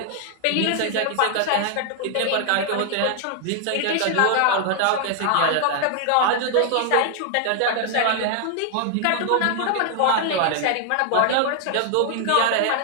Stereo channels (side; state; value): both; different; correlation 0.00